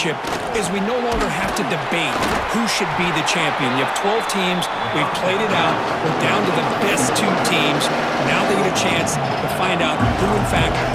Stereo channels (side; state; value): both; identical; correlation 1.00